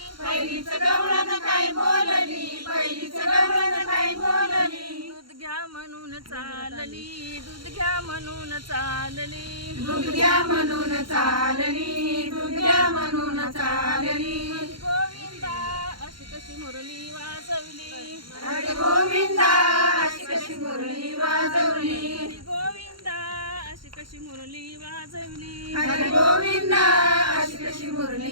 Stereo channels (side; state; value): left; late; 0.73 ms